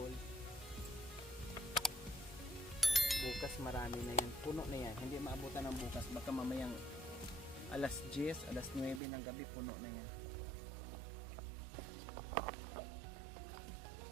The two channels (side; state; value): left; drops out; at 9.0 s